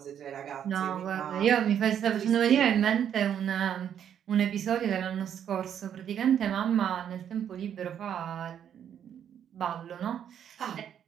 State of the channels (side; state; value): left; quieter; 9.2 dB